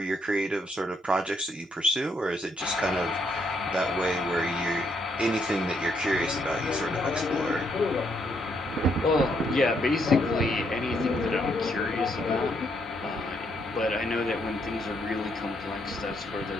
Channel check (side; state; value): both; normal; correlation 0.74